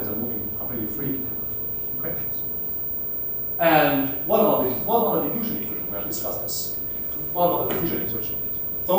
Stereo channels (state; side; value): normal; both; correlation 0.96